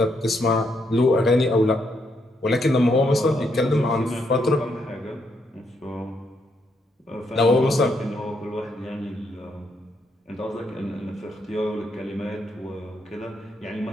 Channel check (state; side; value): normal; both; correlation 0.76